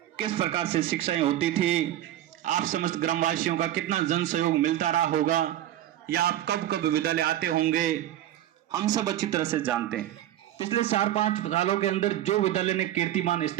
किस प्रकार से शिक्षाएं होती थी, आप समस्त ग्रामवासियों का कितना जन सहयोग मिलता रहा होगा, या आप कब कब विद्यालय आते होंगे, हम सब अच्छी तरह से जानते हैं। पिछले 4-5 सालों के अंदर जो विद्यालय ने कीर्तिमान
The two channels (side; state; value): left; quieter; 12.9 dB